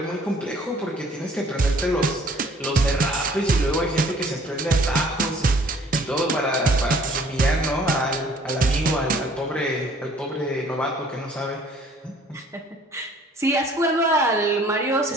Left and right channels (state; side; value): normal; both; correlation 0.56